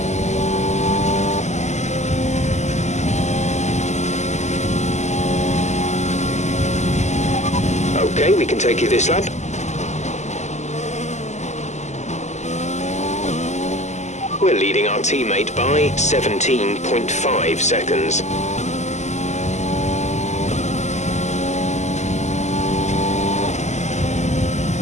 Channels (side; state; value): right; late; 0.33 ms